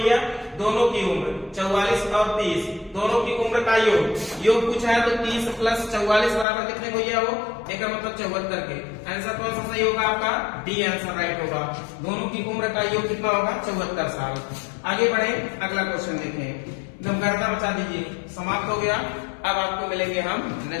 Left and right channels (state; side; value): drops out; right; at 6.5 s